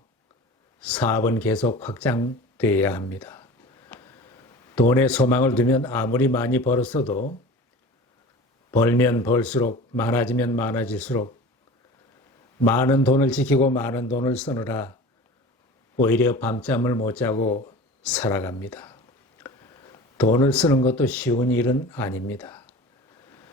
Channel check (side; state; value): both; normal; correlation 0.37